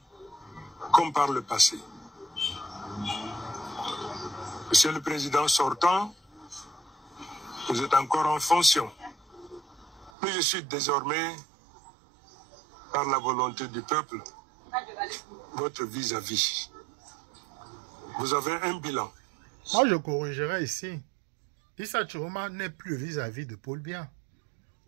comme par le passé. Monsieur le Président sortant, vous êtes encore en fonction. Mais je suis désormais, par la volonté du peuple, votre vis-à-vis. Vous avez un bilan. Moi, je corrigerai ici. Issa Chiroma n'est plus vis-à-vis de Paul Biya.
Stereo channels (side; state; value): left; drops out; at 10.1 s